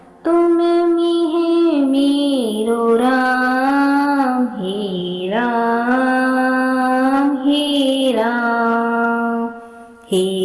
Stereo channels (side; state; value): both; identical; correlation 1.00